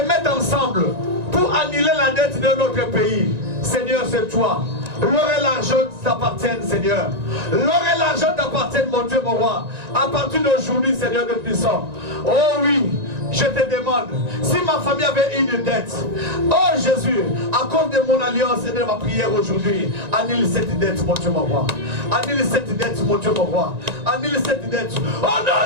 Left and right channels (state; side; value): late; left; 1.9 ms